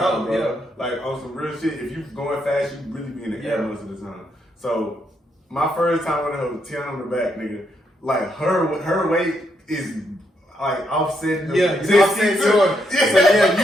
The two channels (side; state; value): both; normal; correlation 0.77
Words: boat, bro. Like on some real shit, if you going fast, you really be in the air Yeah. most of the time. So my first time on the hoe, 10 on the back, nigga, like her weight is like offsetting the you offset yours.